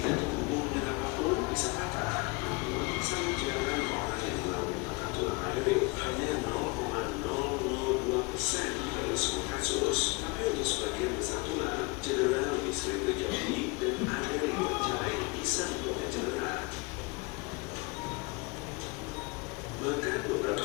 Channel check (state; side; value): quieter; right; 27.4 dB